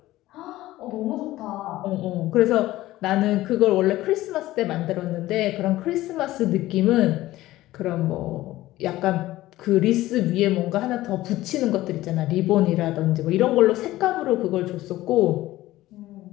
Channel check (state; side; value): quieter; right; 16.3 dB